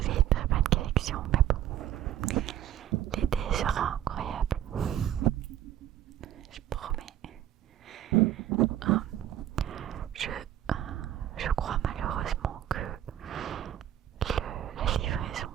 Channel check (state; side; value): quieter; left; 11.7 dB